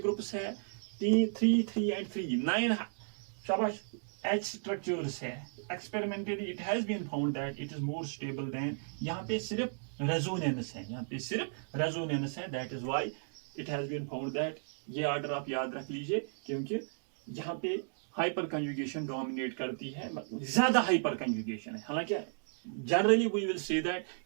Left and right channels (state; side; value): silent; left; digital silence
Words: ग्रुप्स है, 3 एंड 3 9 शाबाश H स्ट्रक्चर्स है। Experimentally it has been found that it is more stable than, यहाँ पे सिर्फ रेजोनेंस है, यहाँ पे सिर्फ रेजोनेंस है, that is why it has been found that. ये ऑर्डर आप याद रख लीजिए, क्योंकि यहाँ पे हाइपर कंजुगेशन डोमिनेट करती है, ज्यादा हाइपर कंजुगेशन है। हालांकि generally we will say that